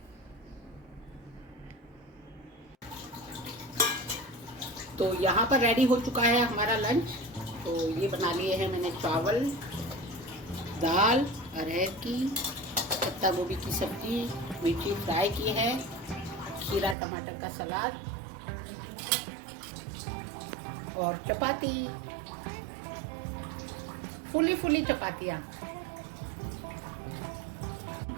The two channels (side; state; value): left; drops out; at 16.9 s